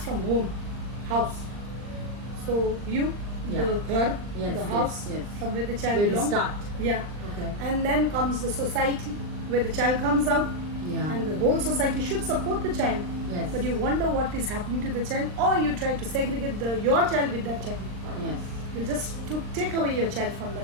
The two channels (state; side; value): late; left; 39 ms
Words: from home, house. So you, Yeah. the ghar, Yes, the house, yes. from where the child Where we belongs. start. Yeah. Okay. And then comes the society, where the child comes out, Yeah. and the whole society should support the child. Yes. But you wonder what is happening to the child, or you try to segregate your child with that child. Yes. You just take away your child from